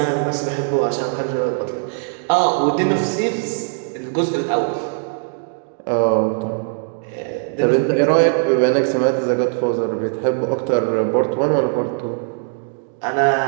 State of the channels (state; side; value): silent; left; digital silence